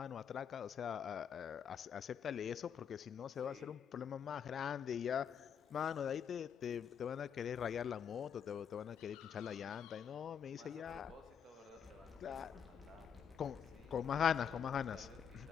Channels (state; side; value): quieter; right; 7.9 dB